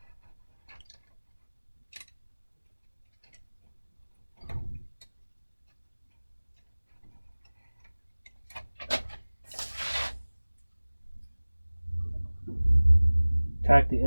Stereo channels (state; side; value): inverted; both; correlation -1.00